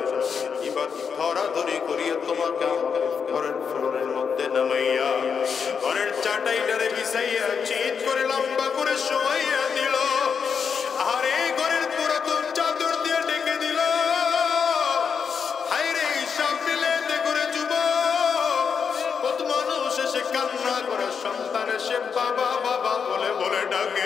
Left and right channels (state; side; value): quieter; right; 6.4 dB